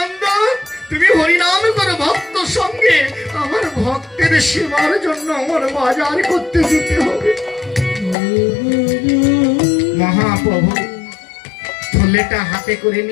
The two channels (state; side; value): drops out; right; at 8.2 s